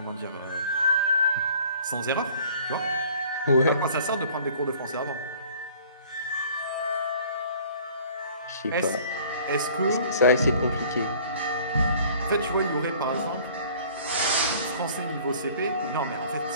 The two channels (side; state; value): both; inverted; correlation -0.52